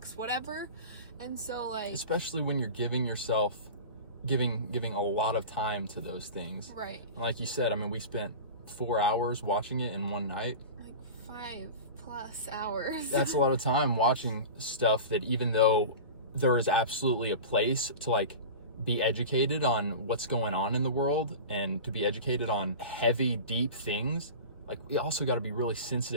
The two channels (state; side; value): inverted; both; correlation -0.32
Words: whatever. And so, like, especially when you're giving yourself, giving a lot of time to those things. Right. And like you said, I mean, we spent 4 hours watching it in one night. Like 5+ hours. That's a lot of time watching stuff that, even though there is absolutely a place to like be educated on what's going on in the world and to be educated on heavy, deep things, like we also got to be really